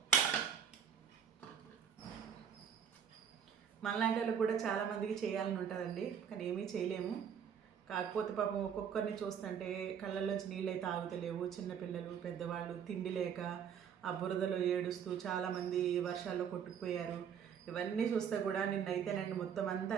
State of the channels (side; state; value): left; quieter; 7.9 dB